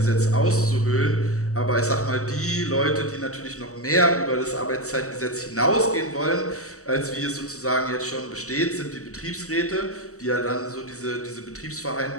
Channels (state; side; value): late; right; 0.65 ms